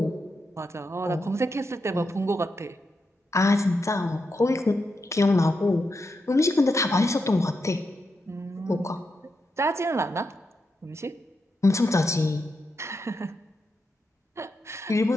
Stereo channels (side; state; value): both; normal; correlation 0.85